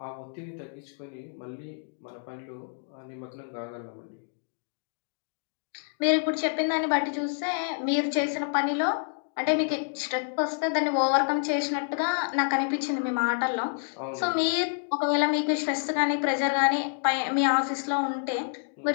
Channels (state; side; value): silent; right; digital silence